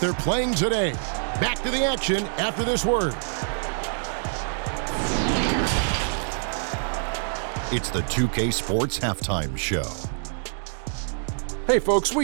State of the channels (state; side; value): silent; left; digital silence